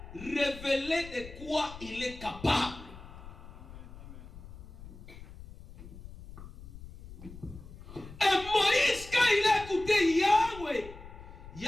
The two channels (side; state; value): left; noise; rumble, 15 dB below the sound